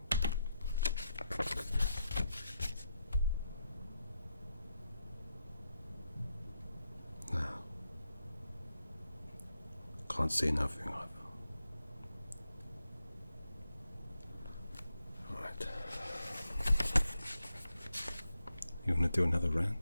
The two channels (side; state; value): both; inverted; correlation -0.84